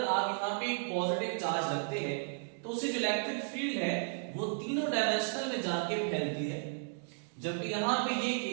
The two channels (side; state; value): left; silent; digital silence